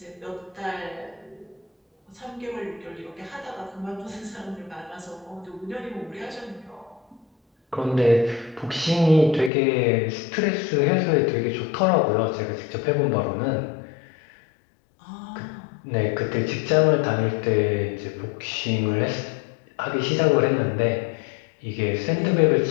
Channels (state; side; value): drops out; right; at 9.5 s